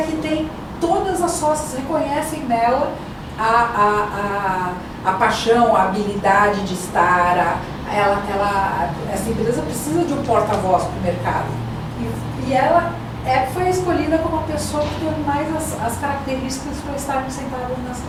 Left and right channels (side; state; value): both; identical; correlation 1.00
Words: tem todas as sócias reconhecem nela a paixão, a habilidade de estar, essa empresa precisa de um porta-voz para o mercado. E ela foi escolhida como a pessoa que tem mais as características para estar sentada